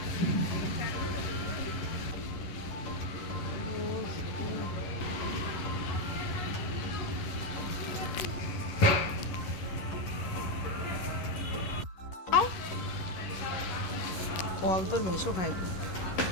ফল তোর মেশো খাইব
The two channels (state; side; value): late; right; 11 ms